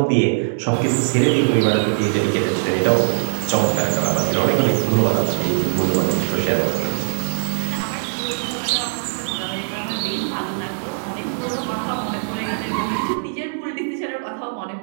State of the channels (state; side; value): silent; left; 63 dB below the other